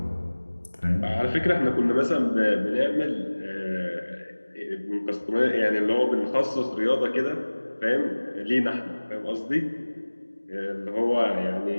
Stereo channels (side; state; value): both; inverted; correlation -1.00